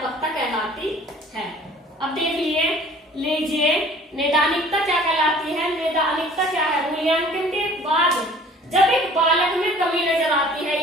कहलाती है। अब देख लीजिए नैदानिकता क्या कहलाती है। नैदानिकता क्या है? मूल्यांकन के बाद जब एक बालक में कमी नजर आती है,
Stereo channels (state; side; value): normal; both; correlation 0.50